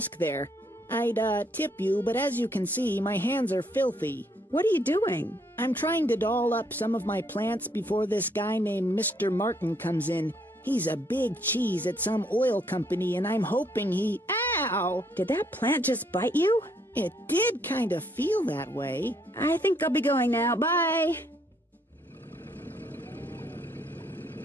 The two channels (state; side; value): normal; both; correlation 0.70